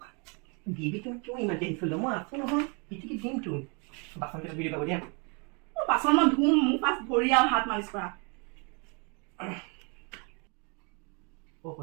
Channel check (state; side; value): quieter; left; 33.5 dB